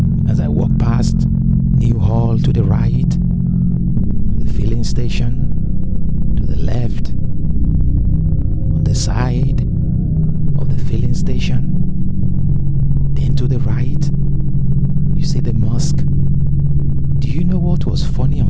As I walk past New Hall to the right, the filling station to the left, on the side of the filling station, then to the right, you see the mosque. Do you know what was funny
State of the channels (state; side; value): identical; both; correlation 1.00